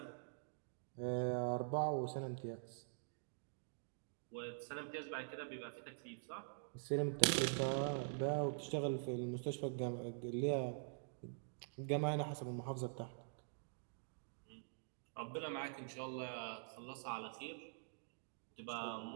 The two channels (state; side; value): silent; left; digital silence